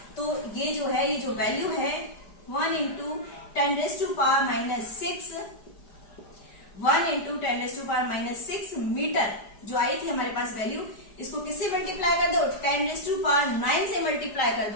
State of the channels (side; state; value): right; late; 5.1 ms